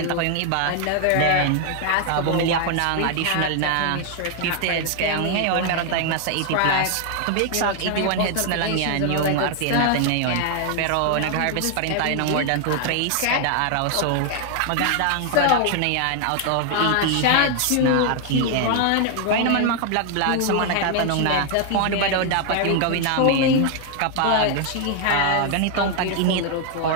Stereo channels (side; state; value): both; different; correlation 0.00